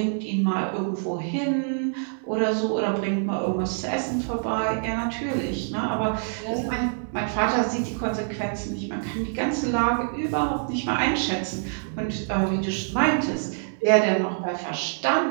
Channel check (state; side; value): silent; left; digital silence